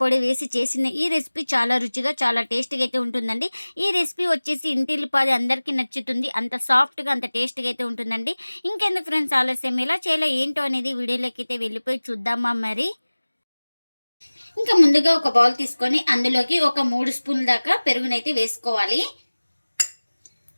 వేసి చేసిన ఈ రెసిపీ చాలా రుచిగా, చాలా టేస్టీగా అయితే ఉంటుందండి. ఈ రెసిపీ వచ్చేసి ఇంటిల్లిపాది అందరికీ నచ్చుతుంది. అంత సాఫ్ట్‌గా, అంత టేస్టీగా అయితే ఉంటుందండి. ఇంకెందుకు ఫ్రెండ్స్ ఆలస్యం, ఎలా చేయాలో ఏంటో అనేది వీడియోలోకైతే వెళ్ళిపోయి చూద్దామా మరి? ఇంకా ముందుగా ఒక బౌల్ తీసుకొని అందులోకి ఒక 3 స్పూన్ల దాకా పెరుగునైతే వేసుకోవాలి.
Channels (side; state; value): both; inverted; correlation -1.00